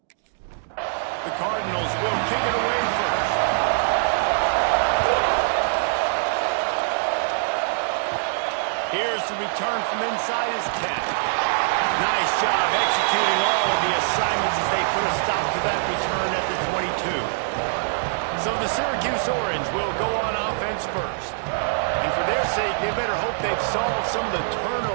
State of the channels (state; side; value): silent; left; digital silence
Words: The Cardinals will kick it away first. Here's the return from inside his 10. Nice job executing all of the assignments as they put a stop to that return at the 22. So the Syracuse Orange will go on offense first. And for their sake, they better hope they've solved some of the